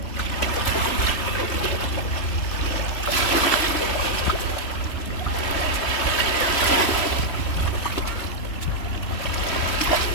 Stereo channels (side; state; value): right; late; 3.0 ms